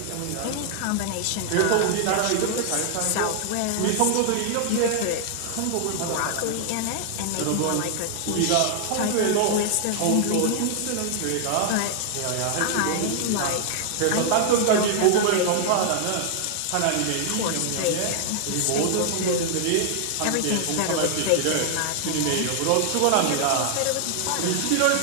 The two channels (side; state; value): both; different; correlation 0.00